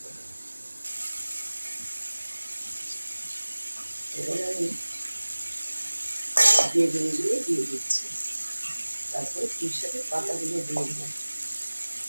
এবার আমি বেগুনগুলো দিয়ে দিচ্ছি, তারপরে পুঁই শাকের পাতাগুলো দিয়ে দেবো।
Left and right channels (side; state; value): both; inverted; correlation -1.00